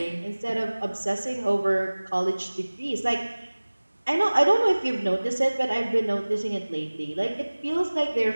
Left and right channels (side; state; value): both; inverted; correlation -1.00